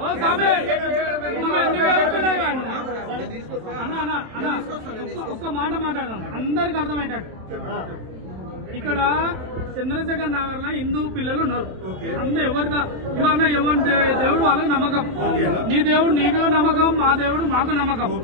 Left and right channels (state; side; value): late; left; 28 ms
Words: ఒక్క మాట మాట్లాడదాం అందరికి అర్థమయ్యేటట్టు. ఇక్కడ చంద్రశేఖర్ నగర్ లో హిందూ పిల్లలు ఉన్నారు. అందరూ ఎవరిదా ఇవన్న ఎవరి దేవుడు వాళ్ళకి నమ్మకం. నీ దేవుడు నీకు నమ్మకం, మా దేవుడు మాకు నమ్మకం.